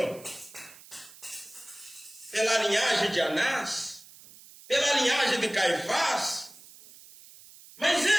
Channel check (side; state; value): right; noise; hiss, 21 dB below the sound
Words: pela linhagem de Anás, pela linhagem de Caifás, mas